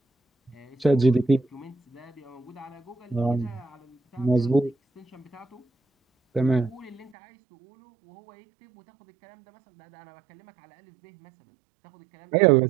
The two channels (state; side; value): drops out; left; at 7.1 s